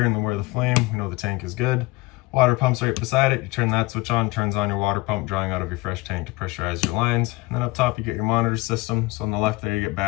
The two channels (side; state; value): right; quieter; 22.3 dB